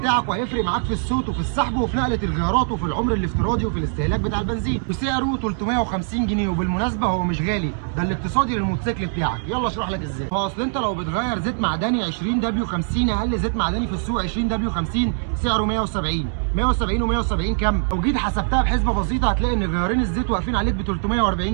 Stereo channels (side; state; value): left; silent; digital silence